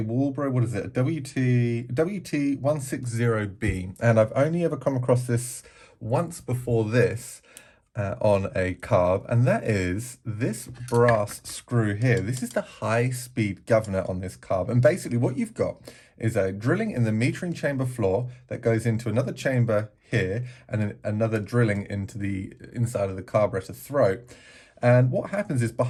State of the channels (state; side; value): identical; both; correlation 1.00